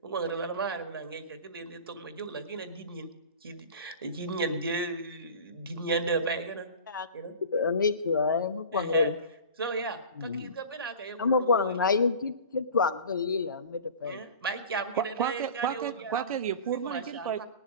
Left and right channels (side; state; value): both; inverted; correlation -0.38